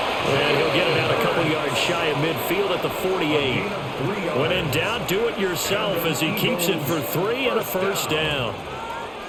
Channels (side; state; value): both; identical; correlation 1.00